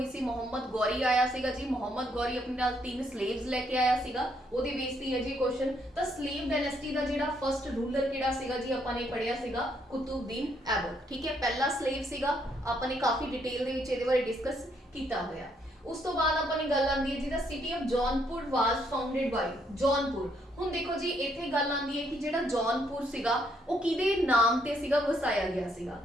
ਸੀ। ਮੁਹੰਮਦ ਗੌਰੀ ਆਇਆ ਸੀਗਾ ਜੀ। ਮੁਹੰਮਦ ਗੌਰੀ ਆਪਣੇ ਨਾਲ 3 slaves ਲੈ ਕੇ ਆਇਆ ਸੀਗਾ, ਉਹਦੇ ਬੇਸ ਤੇ ਹੈ ਜੀ ਕੁਐਸਚਨ। ਤਾਂ slave dynasty ਦਾ ਜਿਹੜਾ ਫਸਟ ਰੂਲਰ ਕਿਹੜਾ ਸੀਗਾ ਜੀ, ਆਪਾਂ ਨੇ ਪੜ੍ਹਿਆ ਸੀਗਾ ਕੁਤੁਬਦੀਨ ਐਬਕ, ਠੀਕ ਹੈ। ਪਹਿਲਾ slave ਸੀਗਾ, ਆਪਾਂ ਨੇ ਕਾਫੀ ਡਿਟੇਲ ਦੇ ਵਿੱਚ ਇਹਦੇ ਬਾਰੇ ਡਿਸਕਸ ਕੀਤਾ ਹੋਇਆ। ਉਸ ਤੋਂ ਬਾਅਦ ਆਪਾਂ ਨੇ ਗੱਲ ਆਂਦੀ ਹੈ ਜਿਹਦਾ city of Jaunpur was founded by Jaunpur. ਹੁਣ ਦੇਖੋ ਜੀ ਇੱਥੇ ਗੱਲ ਆਂਦੀ ਹੈ ਕਿ ਜਿਹੜਾ ਜੌਨਪੁਰ ਸੀਗਾ ਉਹ ਕਿਹਦੇ ਨਾਮ ਤੇ ਸੀਗਾ ਵਸਾਇਆ ਗਿਆ ਸੀਗਾ।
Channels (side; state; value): both; normal; correlation 0.72